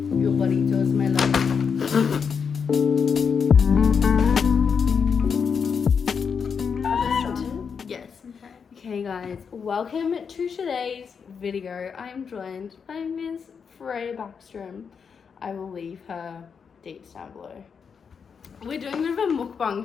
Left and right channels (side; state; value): right; quieter; 6.3 dB